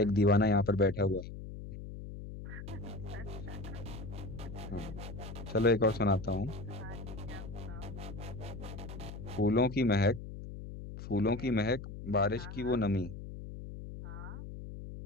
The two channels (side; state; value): left; noise; hum, 10 dB below the sound